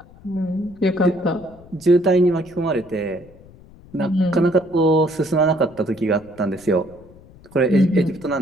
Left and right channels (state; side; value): noise; left; rumble, 23 dB below the sound